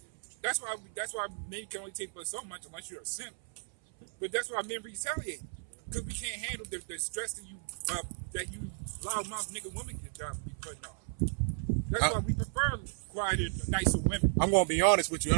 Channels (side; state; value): left; silent; 55 dB below the other